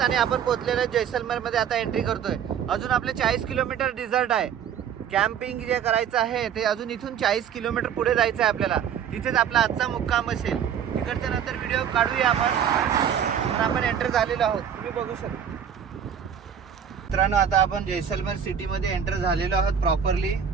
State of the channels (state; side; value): quieter; left; 8.4 dB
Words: आणि आपण पोहोचलेलो आहे जैसलमेर मध्ये. आता एंट्री करतोय. अजून आपले 40 किलोमीटर डिझर्ट आहे. कॅम्पिंग जे करायचं आहे ते अजून इथून 40 किलोमीटर पुढे जायचं आहे आपल्याला. तिथेच आपला आजचा मुक्काम असेल. तिकडच्या नंतर व्हिडिओ काढूया आपण. तर आपण एंटर झालेलो आहोत, तुम्ही बघू शकता. मित्रांनो आता आपण जैसलमेर सिटीमध्ये एंटर झालेलो आहोत प्रॉपरली.